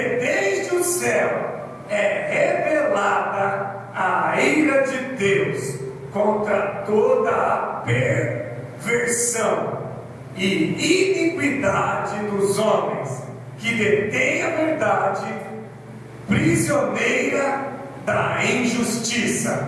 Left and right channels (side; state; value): both; identical; correlation 1.00